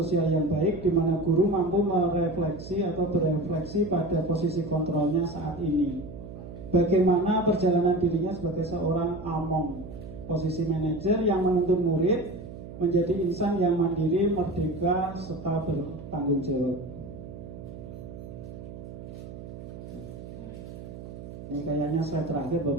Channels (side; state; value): right; noise; hum, 12 dB below the sound